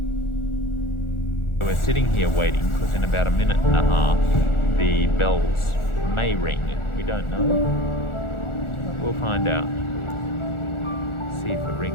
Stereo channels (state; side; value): late; right; 1.4 ms